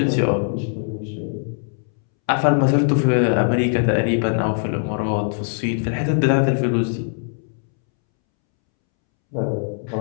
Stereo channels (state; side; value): silent; right; 65 dB below the other